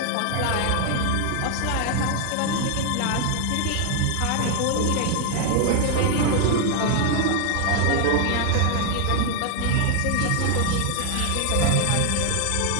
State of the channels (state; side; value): different; both; correlation 0.00